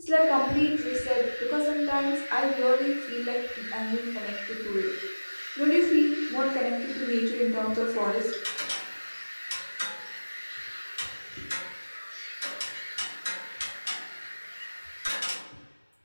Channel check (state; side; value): inverted; both; correlation -1.00